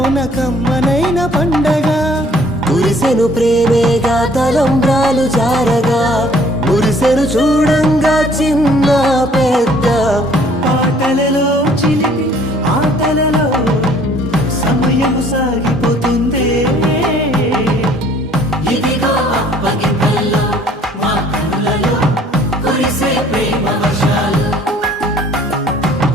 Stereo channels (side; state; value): both; normal; correlation 0.58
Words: కమ్మనైన పండగ కురిసెను ప్రేమేగా తలంబ్రాలు జారగా మురిసెను చూడంగా చిన్న పెద్ద పాటలలో చిలిపి ఆటలలో సమయం సాగిపోతుందే ఇదిగో అప్పగింతల్లో మా కనులలో కురిసే ప్రేమ వర్షాలు